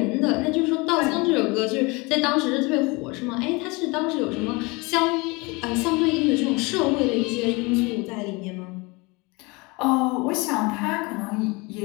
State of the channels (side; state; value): right; quieter; 26.2 dB